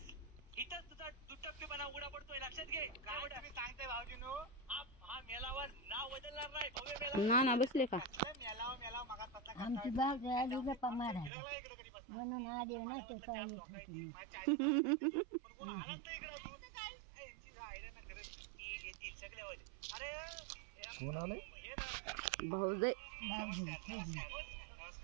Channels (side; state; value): left; drops out; at 11.3 s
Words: इथं तुझा दुटप्पीपणा उघडा पडतोय. लक्षात घे. काय तुम्ही सांगताय भाऊजीनो? हा मेलावा नाव बदलणार नाही. भव्य मेलावा ना बसले का मेलावा मेलावा मगा तसा आमची बाग आली गप्पा मारायला म्हणून आली नाही तर काय होत होती. कोण आलाच नाही इकडं. तू काय यांची राहिलं ना खरं की येतील सगळे होईल. अरे कोण आले? भाऊजय